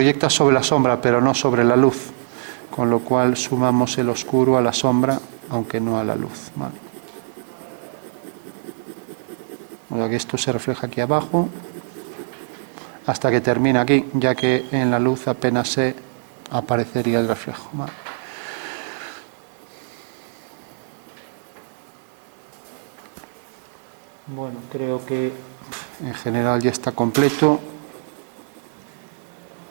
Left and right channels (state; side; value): silent; left; digital silence